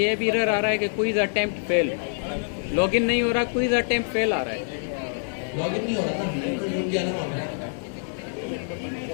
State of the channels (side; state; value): right; silent; digital silence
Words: भी एरर आ रहा है कि क्विज अटेम्प्ट फेल, लॉगिन नहीं हो रहा, क्विज अटेम्प्ट फेल आ रहा है। लॉगिन नहीं हो रहा ना, तो जुड़ गया ना वहाँ पे,